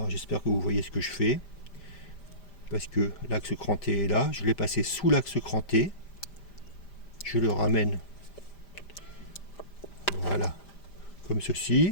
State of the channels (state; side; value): late; right; 5.0 ms